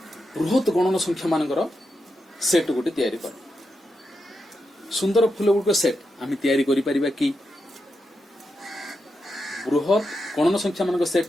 बृहत गणन संख्या मानकर सेट गोटे तैयारी कर सुंदर फूल गुड़िक सेट आम तैयारी करि परिबा कि बृहत गणन संख्या मानक सेट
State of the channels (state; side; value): normal; both; correlation 0.86